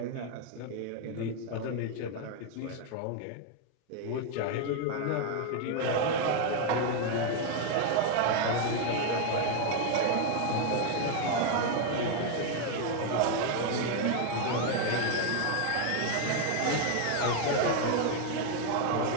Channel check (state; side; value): different; both; correlation 0.01